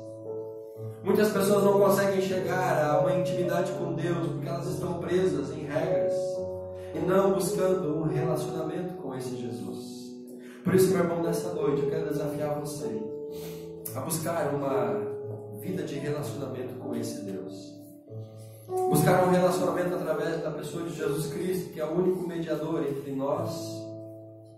Muitas pessoas não conseguem chegar a uma intimidade com Deus porque elas estão presas em regras e não buscando um relacionamento com esse Jesus. Por isso, meu irmão, nessa noite eu quero desafiar você a buscar uma vida de relacionamento com esse Deus. Buscar um relacionamento através da pessoa de Jesus Cristo, que é o único mediador entre nós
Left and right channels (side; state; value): both; identical; correlation 1.00